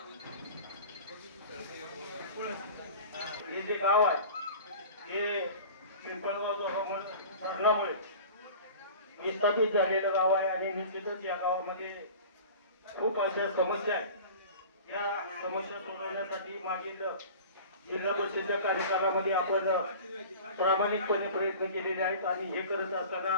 हे जे गाव आहे हे पिंपळगाव धरणामुळे विस्थापित झालेलं गाव आहे आणि निश्चितच या गावामध्ये खूप अशा समस्या आहेत। या समस्या सोडवण्यासाठी मागील जिल्हा परिषदेच्या कार्यकालामध्ये आपण प्रामाणिकपणे प्रयत्न केलेले आहेत आणि हे करत असताना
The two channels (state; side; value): inverted; both; correlation -0.39